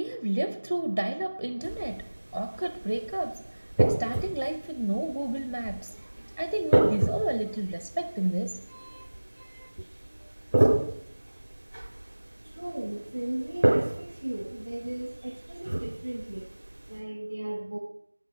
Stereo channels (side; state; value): both; inverted; correlation -1.00